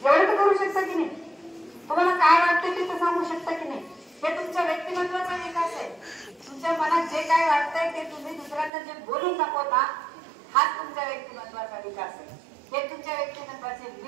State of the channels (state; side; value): drops out; left; at 8.7 s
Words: एवढं तर करू शकता की नाही। तुम्हाला काय वाटतं ते तर सांगू शकता की नाही, हे तुमच्या व्यक्तिमत्वाचा विकास आहे। तुमच्या मनात जे काय वाटतंय ते तुम्ही दुसऱ्यांना जे बोलून दाखवता, हाच तुमच्या व्यक्तिमत्वाचा विकास आहे। हे तुमच्या व्यक्तिमत्वाचे